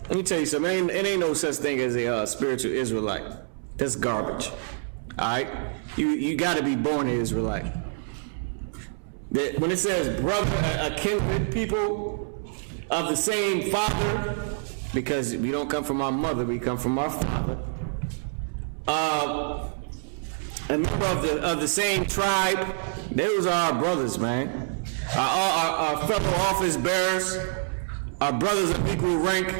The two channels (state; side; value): silent; left; 60 dB below the other